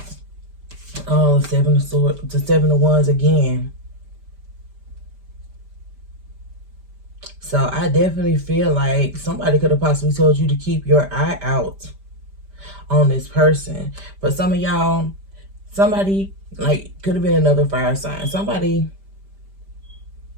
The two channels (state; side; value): late; left; 5.1 ms